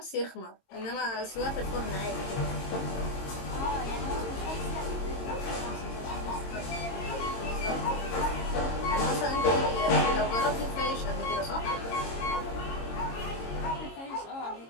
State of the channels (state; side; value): late; right; 22 ms